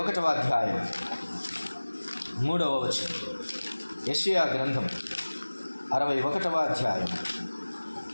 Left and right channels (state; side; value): inverted; both; correlation -1.00